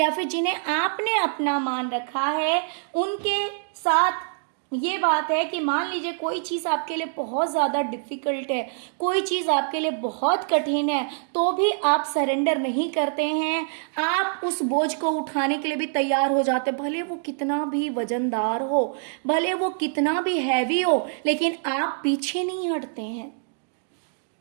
फिर जिन्हें आपने अपना मान रखा है, उनके साथ ये बात है कि मान लीजिए कोई चीज़ आपके लिए बहुत ज़्यादा डिफ़िकल्ट है, कोई चीज़ आपके लिए बहुत कठिन है, तो भी आप सरेंडर नहीं करते हैं। आप उस बोझ को उठाने के लिए भी तैयार हो जाते हैं, भले वो कितना भी वजनदार हो, भले वो कितना भी हैवी हो, लेकिन आप पीछे नहीं हटते हैं।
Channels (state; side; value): silent; left; digital silence